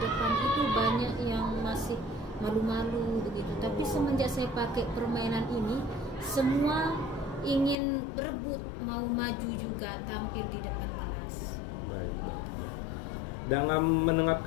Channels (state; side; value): drops out; right; at 7.8 s